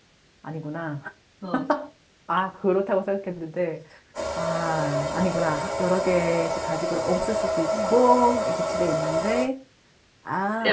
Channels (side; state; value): both; identical; correlation 1.00